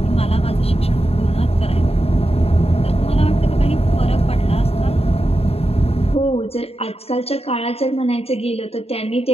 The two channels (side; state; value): right; late; 0.29 ms